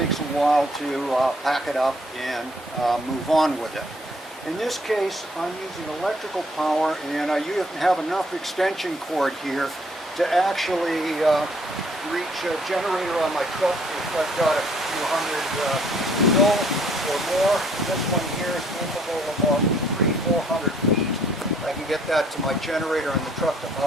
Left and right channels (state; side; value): normal; both; correlation 0.63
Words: a while to pack it up and move on with it. In this case, I'm using electrical power, and I have enough extension cord here to actually reach a generator on my truck if I've got a few hundred mil or more. This one here is capable of about 300-400 feet. I can get that to my generator in the truck to